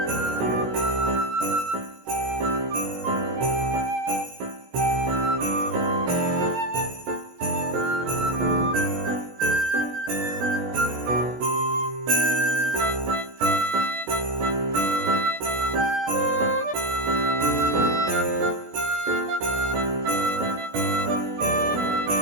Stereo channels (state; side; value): late; left; 16 ms